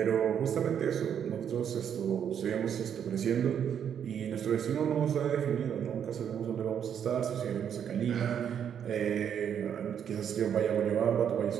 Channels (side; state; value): left; quieter; 8.5 dB